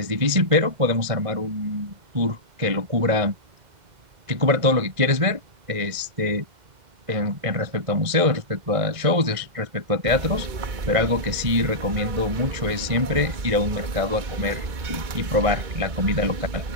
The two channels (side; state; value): left; late; 1.6 ms